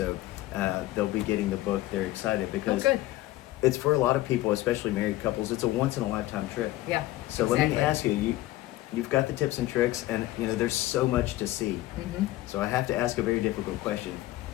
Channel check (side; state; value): right; quieter; 16.7 dB